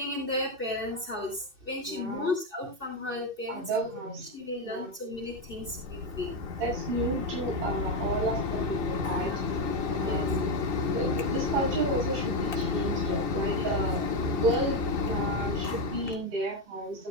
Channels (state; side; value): late; left; 2.6 ms